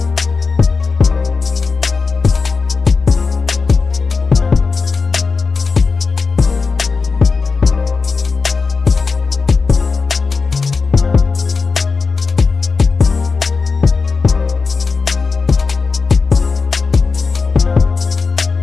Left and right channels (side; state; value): right; quieter; 4.6 dB